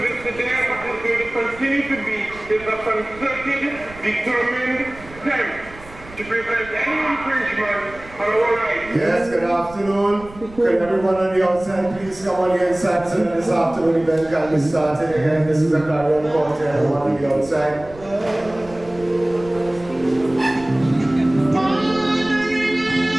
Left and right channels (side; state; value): right; noise; rumble, 19 dB below the sound